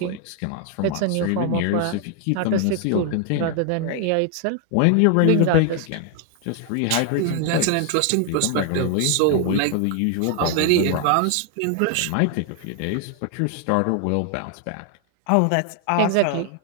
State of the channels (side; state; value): both; different; correlation 0.00